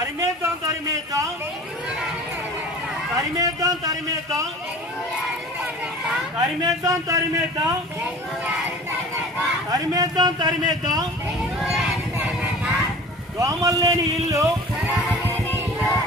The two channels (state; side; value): normal; both; correlation 0.41